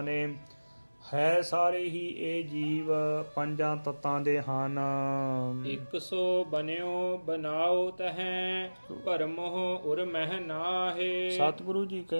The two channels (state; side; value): inverted; both; correlation -1.00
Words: ਨੇ। ਹੈ ਸਾਰੇ ਹੀ ਇਹ ਜੀਵ ਪੰਜਾਂ ਤੱਤਾਂ ਦੇ ਹਨ। ਇਕ ਸੋ ਬਨਿਓ ਬਨਾਓ ਤਹੈ, ਭਰਮਹੁ ਉਰ ਮਹਿ ਨਾਹੇ। ਸਤਿਗੁਰੂ ਜੀ